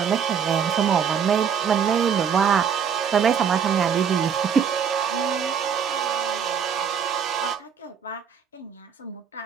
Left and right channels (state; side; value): quieter; left; 7.3 dB